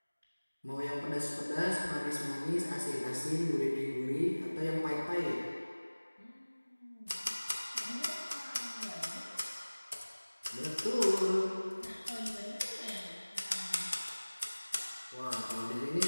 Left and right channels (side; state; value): both; inverted; correlation -1.00